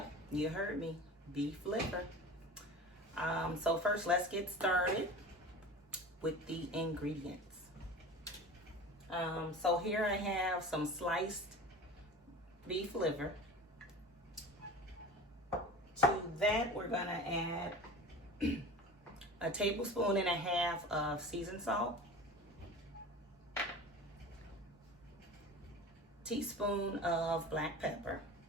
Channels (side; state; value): both; normal; correlation 0.35